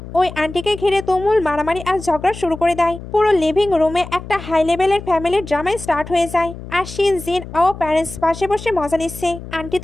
ওই আন্টিকে ঘিরে তুমুল মারামারি আর ঝগড়া শুরু করে দেয়। পুরো লিভিং রুমে একটা হাই লেভেলের ফ্যামিলির ড্রামাই স্টার্ট হয়ে যায়। আর শিন, জিন ও প্যারেন্টস পাশে বসে মজা নিচ্ছে। আন্টি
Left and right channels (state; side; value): noise; left; hum, 13 dB below the sound